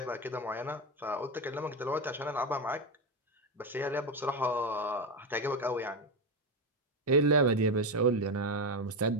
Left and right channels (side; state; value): both; normal; correlation 0.12